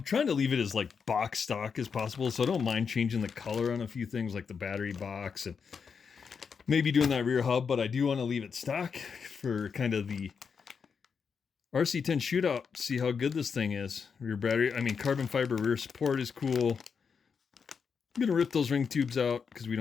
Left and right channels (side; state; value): right; quieter; 6.1 dB